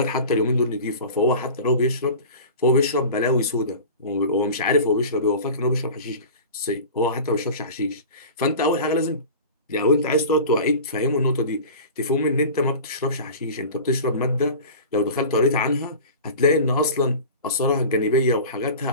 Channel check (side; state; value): both; inverted; correlation -0.36